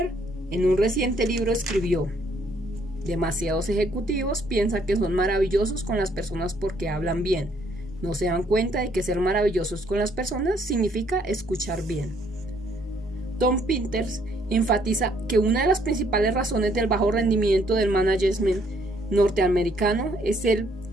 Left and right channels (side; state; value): both; normal; correlation 0.66